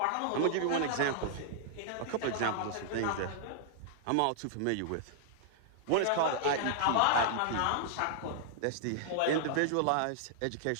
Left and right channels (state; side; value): different; both; correlation -0.01